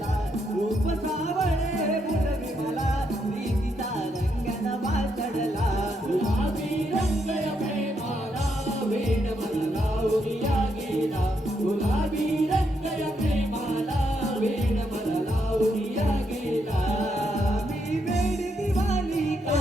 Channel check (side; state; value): both; normal; correlation 0.78